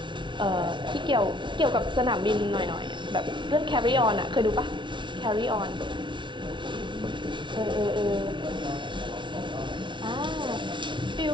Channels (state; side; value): late; left; 0.24 ms